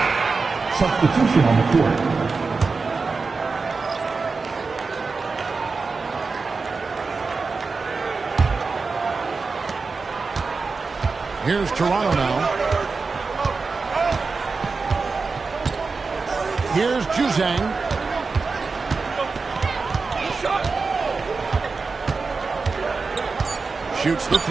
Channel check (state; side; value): quieter; left; 4.4 dB